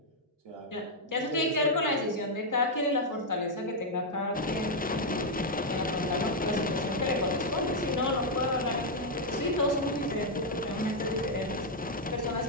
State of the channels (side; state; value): both; normal; correlation -0.02